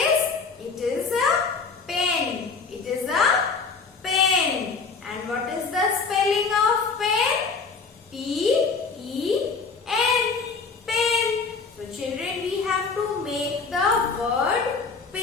It is a pen. It is a pen. And what is the spelling of pen? P-E-N. Pen. So children, we have to make the word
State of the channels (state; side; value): quieter; right; 4.8 dB